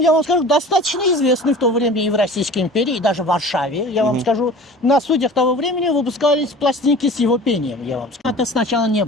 вам скажу, достаточно известный в то время и в Российской империи, и даже в Варшаве. Я вам скажу, на студиях того времени выпускались пластинки с его пением. Я вам скажу. Это сначала не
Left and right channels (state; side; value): normal; both; correlation 0.41